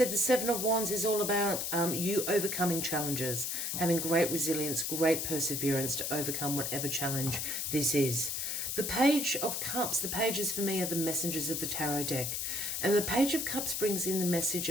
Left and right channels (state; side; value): noise; left; hiss, 2 dB below the sound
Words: the Seven of Wands is all about you overcoming challenges, having great resilience, great perseverance to overcome whatever challenge this is. The Page of Cups, the pages for me are the messengers of the tarot deck. And the Page of Cups brings in the message